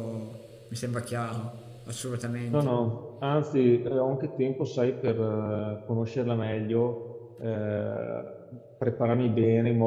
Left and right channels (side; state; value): both; identical; correlation 1.00